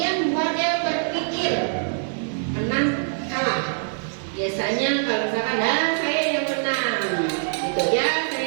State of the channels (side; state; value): left; silent; digital silence